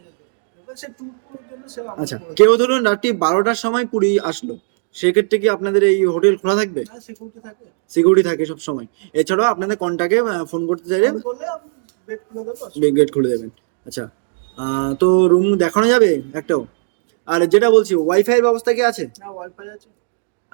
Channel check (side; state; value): left; silent; digital silence